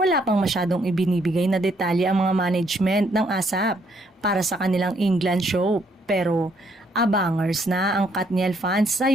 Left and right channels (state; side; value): normal; both; correlation 0.70